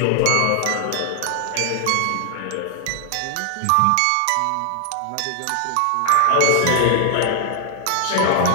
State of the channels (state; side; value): different; both; correlation 0.00